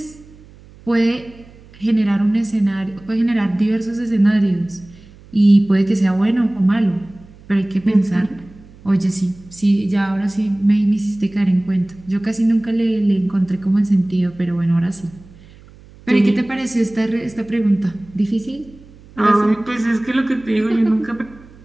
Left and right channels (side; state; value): right; noise; hum, 23 dB below the sound